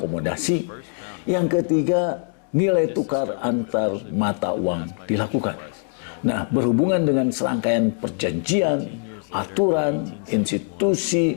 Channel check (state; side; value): silent; right; 64 dB below the other